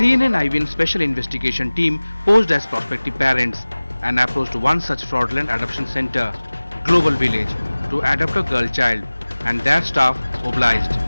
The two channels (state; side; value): inverted; both; correlation -0.99